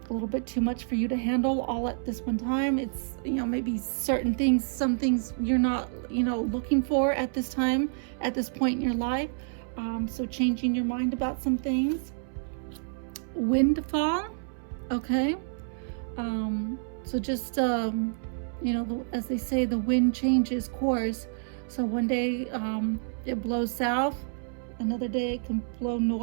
little bit too much for you to handle all at this one time. It's, you know, maybe certain things, some things you're not, you know, looking for at this time, at this point in your life. So changing your mind about some things. Windfall, okay. So just, you know, as they say, the wind changes course. So one day it blows south, another day it can blow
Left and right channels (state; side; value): silent; left; 59 dB below the other